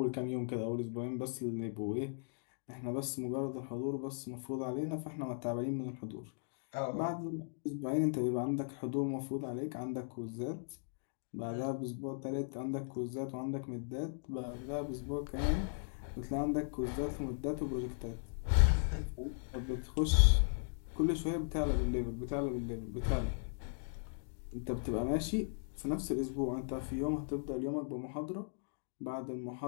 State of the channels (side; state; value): right; silent; digital silence